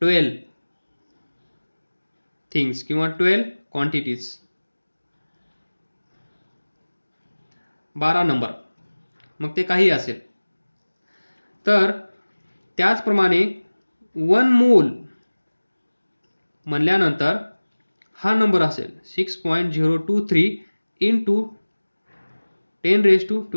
12 थिंग्स किंवा 12 क्वांटिटीज. 12 नंबर, मग ते काही असेल. तर त्याचप्रमाणे 1 मोल म्हणल्यानंतर हा नंबर असेल 6.023 into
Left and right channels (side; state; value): both; inverted; correlation -1.00